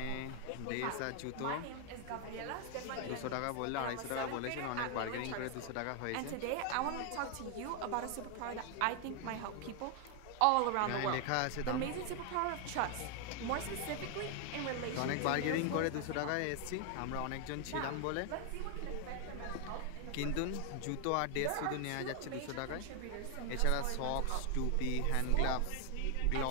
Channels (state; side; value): different; both; correlation 0.00